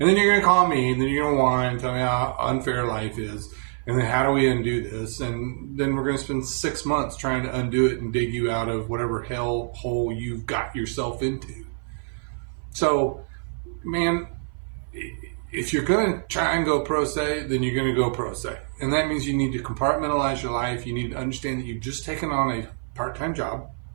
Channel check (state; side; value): silent; left; 56 dB below the other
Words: And then you're going to call me and then you're going to whine and tell me how unfair life is. And then how do we undo this? And then we're going to spend 6 months trying to undo it and dig you out of whatever hell hole you've got yourself into. So, man, if you're going to try and go pro se, then you're going to go pro se. And that means you need to compartmentalize your life. You need to understand that you've just taken on a part-time job.